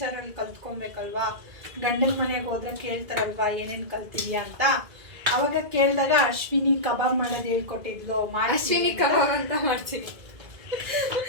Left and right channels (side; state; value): left; late; 2.0 ms